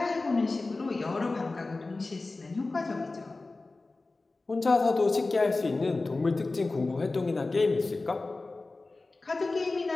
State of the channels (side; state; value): right; quieter; 3.4 dB